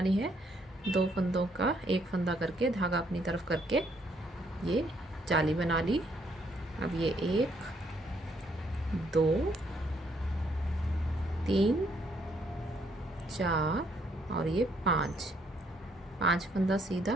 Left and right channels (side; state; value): both; normal; correlation 0.70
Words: है। दो फंदों का एक फंदा करके धागा अपनी तरफ करके ये जाली बना ली। अब ये 1 2 3 4 और ये 5 फंदा सीधा।